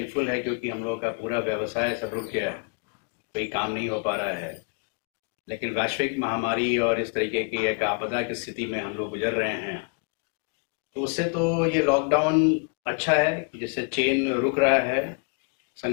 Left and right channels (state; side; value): quieter; right; 36.9 dB